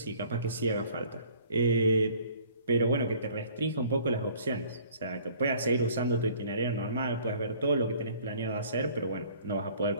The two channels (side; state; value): both; inverted; correlation -0.54